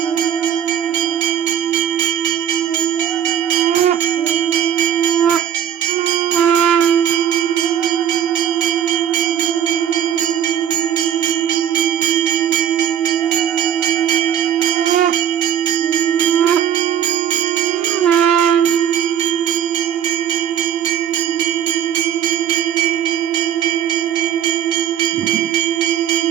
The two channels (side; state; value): left; quieter; 9.7 dB